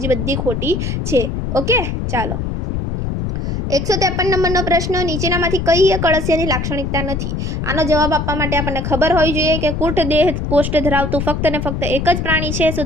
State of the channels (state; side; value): noise; left; rumble, 2 dB below the sound